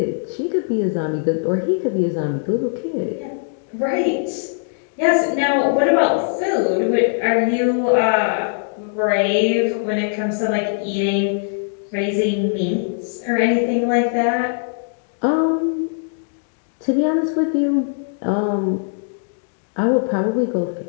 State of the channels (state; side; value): silent; right; digital silence